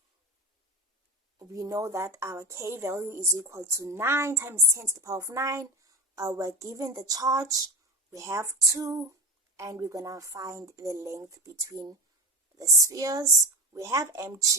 We know that our K value is equal to 9 times 10 to the power of 9. We're given the charge. We have 2, and we're going to find the length between the spheres. We have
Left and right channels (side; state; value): both; normal; correlation 0.27